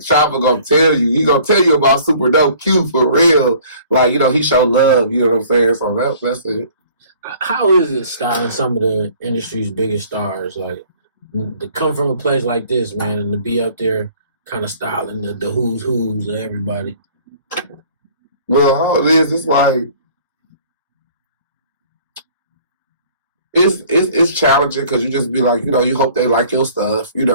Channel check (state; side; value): inverted; both; correlation -0.54